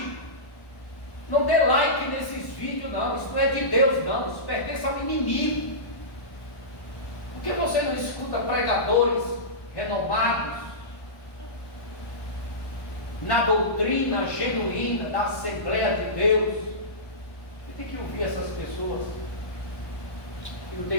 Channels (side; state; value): right; late; 1.1 ms